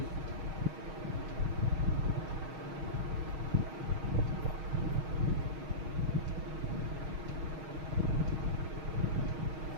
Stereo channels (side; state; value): left; late; 6.4 ms